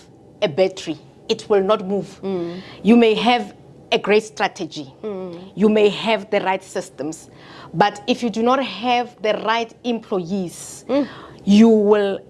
a battery, it will not move. You may have a great strategy, you may have the right systems, but if you do not have the right employees, you will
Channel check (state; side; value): identical; both; correlation 1.00